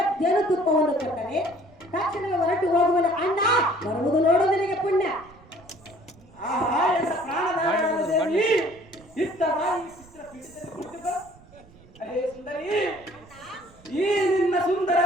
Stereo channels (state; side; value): noise; right; rumble, 25 dB below the sound